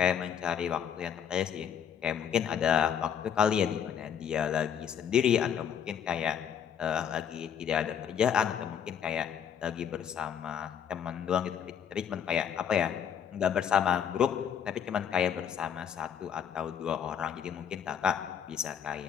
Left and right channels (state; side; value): quieter; right; 8.4 dB